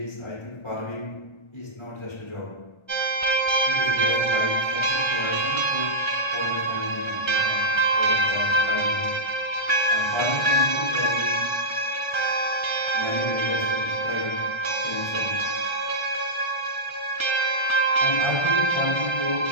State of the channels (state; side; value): late; right; 1.3 ms